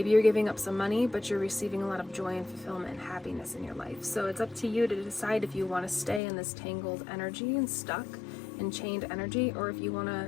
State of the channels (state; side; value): drops out; right; at 6.2 s